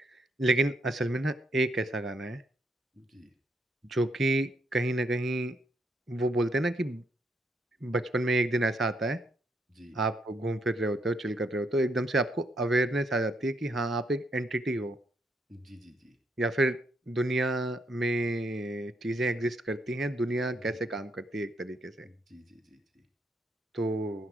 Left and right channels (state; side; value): normal; both; correlation 0.75